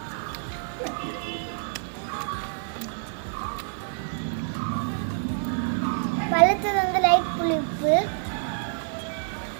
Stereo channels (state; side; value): silent; left; digital silence